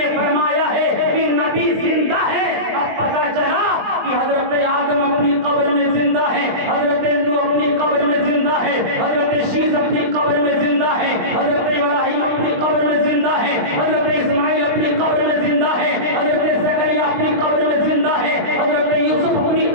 فرمایا ہے کہ نبی زندہ ہے. اب پتہ چلا کہ حضرت آدم اپنی قبر میں زندہ ہے، حضرت نوح اپنی قبر میں زندہ ہے، حضرت شیس اپنی قبر میں زندہ ہے، حضرت ابراہیم اپنی قبر میں زندہ ہے، حضرت اسماعیل اپنی قبر میں زندہ ہے، حضرت زکریا اپنی قبر میں زندہ ہے، حضرت یوسف اپنی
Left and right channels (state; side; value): late; left; 20 ms